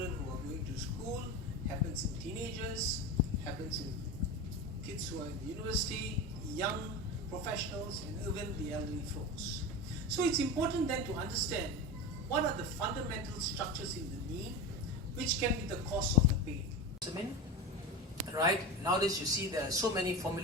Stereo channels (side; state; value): both; normal; correlation 0.25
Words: who are going to school, happens in teenagers, happens in kids who are in the university, young professionals, and even the elderly folks. So it's important then to understand what are the fundamental structures in the knee which can be the cause of the pain. Right, nowadays you see there are so many